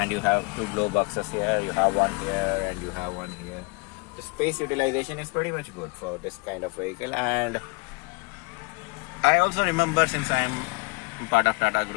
you have two glow boxes here. You have one here and you have one here. The space utilization is pretty much good for this kind of vehicle. And I also remember, since I'm part of Tata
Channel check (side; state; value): right; quieter; 28.1 dB